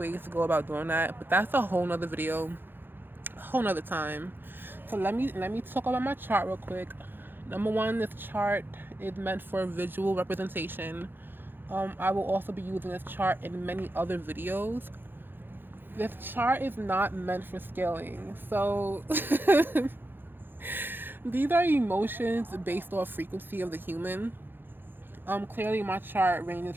to go about doing that, but that's a whole nother video, a whole nother time. So let me talk about my chart real quick. Number one, this chart is meant for visual representation. I will also be using this chart in many other videos. This chart is not meant for scaling. So these are emotions based off frequency of the human. Clearly my chart ranges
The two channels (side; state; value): left; late; 0.099 ms